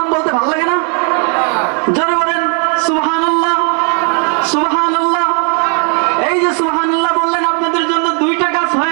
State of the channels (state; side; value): quieter; left; 39.7 dB